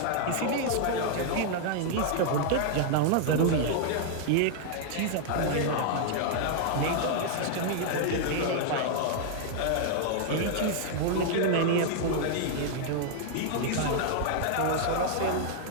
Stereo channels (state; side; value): different; both; correlation -0.01